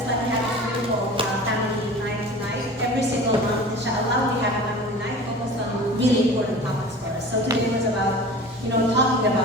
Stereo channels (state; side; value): normal; both; correlation 0.39